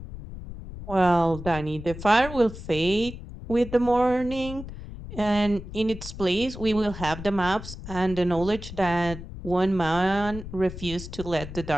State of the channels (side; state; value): left; noise; rumble, 11 dB below the sound